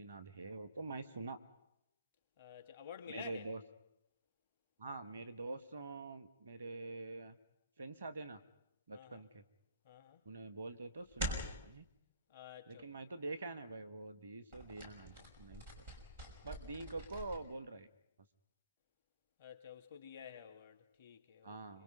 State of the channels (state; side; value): inverted; both; correlation -0.57